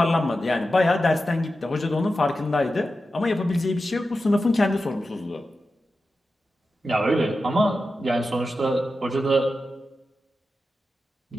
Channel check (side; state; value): both; normal; correlation 0.91